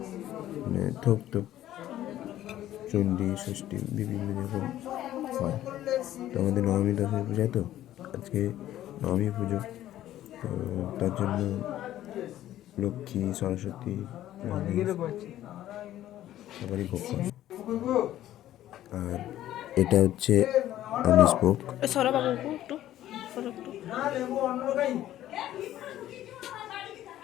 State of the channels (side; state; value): right; quieter; 13.1 dB